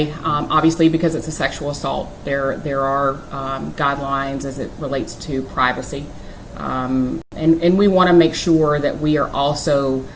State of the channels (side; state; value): both; identical; correlation 1.00